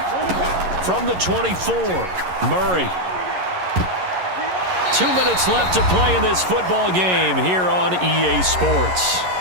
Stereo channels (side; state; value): left; late; 11 ms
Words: From the 24, Murray. 2 minutes left to play in this football game here on EA Sports.